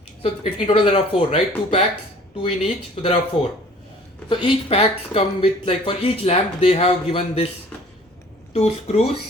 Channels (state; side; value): normal; both; correlation 0.51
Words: So in total there are four, right? Two packs, two in each. So there are four. So each packs come with, like, for each lamp they have given this two